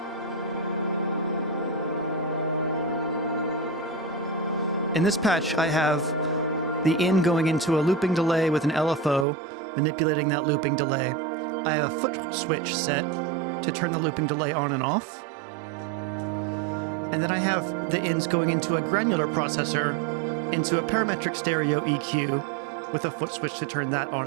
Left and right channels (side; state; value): left; drops out; at 9.2 s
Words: In this patch, I have the in going into a looping delay with an LFO, manipulating that looping delay. I have a Footswitch set to turn the looping delay on and off. And then I have the ins going into a granular processor, into a parametric stereo EQ with a Footswitch to turn that on